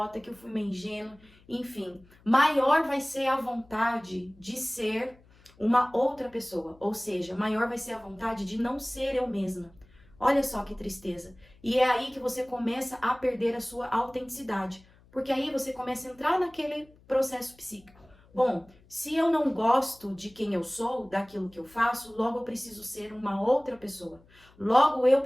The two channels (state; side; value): noise; left; hum, 28 dB below the sound